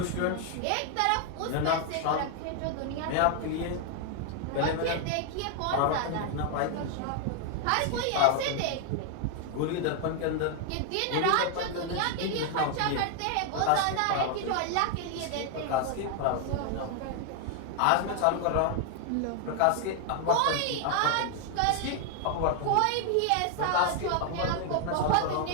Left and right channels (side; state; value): both; different; correlation 0.00